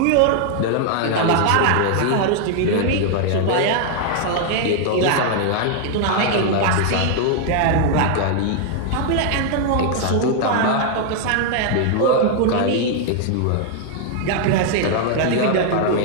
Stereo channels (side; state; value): both; different; correlation 0.00